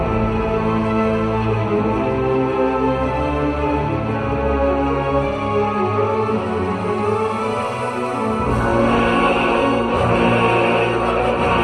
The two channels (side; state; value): both; identical; correlation 1.00